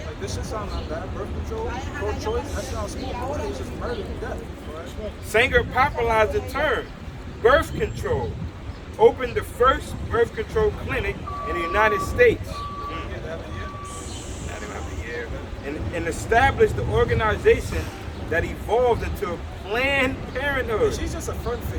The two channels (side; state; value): both; identical; correlation 1.00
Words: Like this shit sound not bad. Birth control, pro-choice, that sounds smooth. But what is just murder and death? Right? Sanger popularized the term birth control, opened the first birth control clinic in the United States. And established the organization that evolved into Planned Parenthood. She's just a front